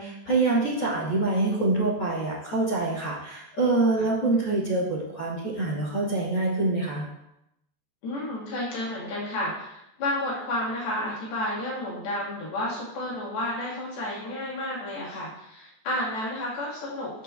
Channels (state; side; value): late; right; 14 ms